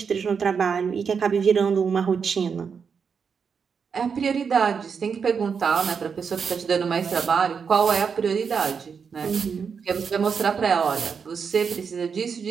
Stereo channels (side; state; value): left; quieter; 6.2 dB